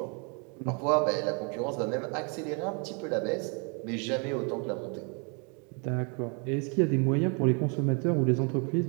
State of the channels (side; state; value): left; quieter; 35.8 dB